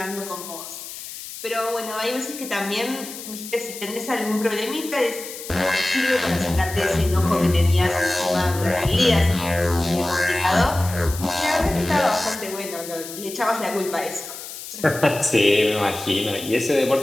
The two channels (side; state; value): left; noise; hiss, 11 dB below the sound